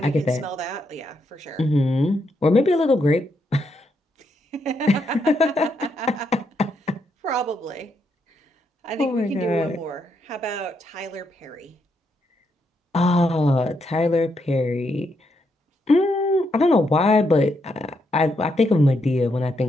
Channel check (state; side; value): normal; both; correlation 0.79